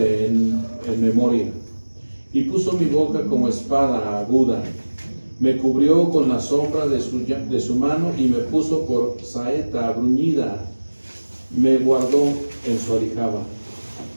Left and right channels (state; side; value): inverted; both; correlation -1.00